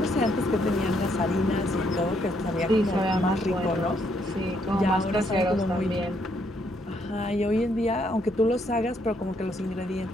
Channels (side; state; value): both; normal; correlation 0.72